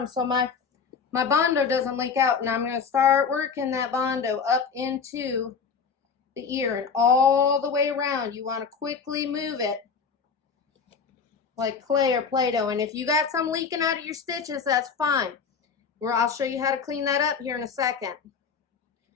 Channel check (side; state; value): right; quieter; 5.9 dB